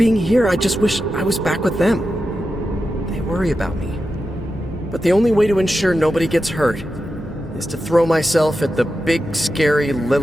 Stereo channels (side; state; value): both; normal; correlation 0.90